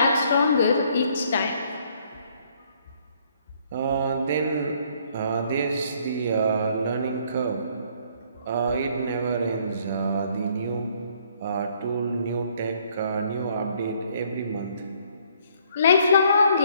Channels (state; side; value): inverted; both; correlation -0.64